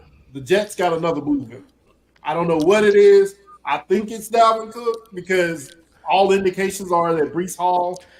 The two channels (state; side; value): identical; both; correlation 1.00